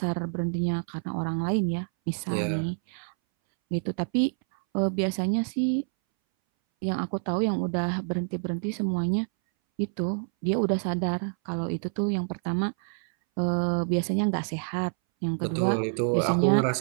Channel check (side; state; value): left; silent; 60 dB below the other